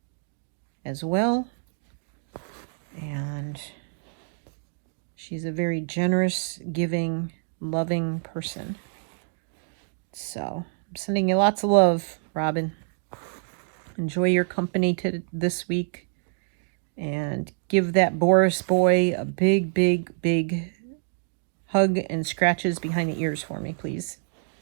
as well. And she's a very generous, giving, loving person. So I'm sending you lots of love, Robin. Enjoy your company this week. And give that Boris boy a big hug and scratches behind the ears for me, please.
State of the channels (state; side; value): silent; left; 60 dB below the other